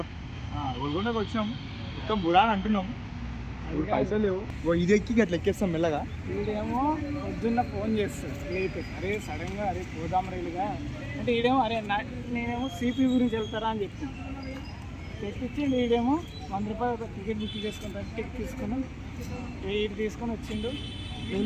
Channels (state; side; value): identical; both; correlation 1.00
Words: గోల్కొండకి వచ్చినాం, మొత్తం బుడా అని అంటున్నాం. ఇప్పుడు పైసలు లేవు. ఇది ఎక్కి అట్లా ఎక్కేస్తాం మెల్లగా. వీడేమో పొద్దున్న ఫోన్ చేస్తాడు లేపి, అరే సడన్గా అరే పోదాం రైలుగా అంటే ఈడేమో అరే నేనేమో సిపి గురించి వెళ్తారా అని చెప్తాను. తెప్పించి వీడేమో 100 రూపాయలు ఒక టికెట్ బుక్ చేసుకుంటాను. టికెట్ తీసుకున్నాం, ఇది తీసుకొని వచ్చిండు.